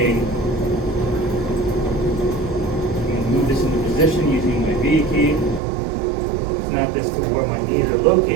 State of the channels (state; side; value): drops out; left; at 5.6 s